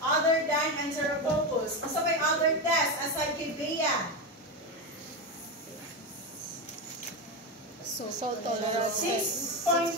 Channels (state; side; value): normal; both; correlation 0.14